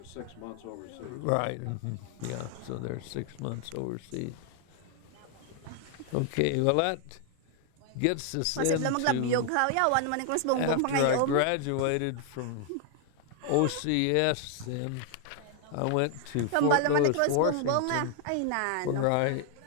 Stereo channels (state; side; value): different; both; correlation 0.00